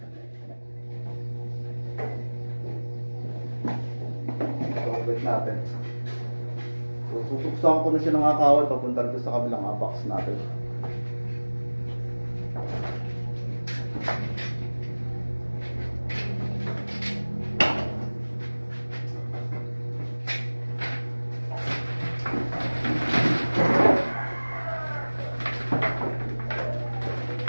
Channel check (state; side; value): inverted; both; correlation -1.00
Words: So outlet natin. So susuksan ko na siya ng kawal papunta dito sa kabilang box natin. Susuwan